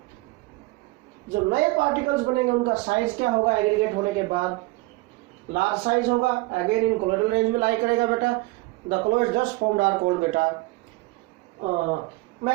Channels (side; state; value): left; quieter; 22.6 dB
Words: जो नए particles बनेंगे उनका साइज क्या होगा? एग्रीगेट होने के बाद लार्ज साइज होगा. अगेन इन कोलोइडल रेंज में लाई करेगा बेटा. The colloids just formed are called बेटा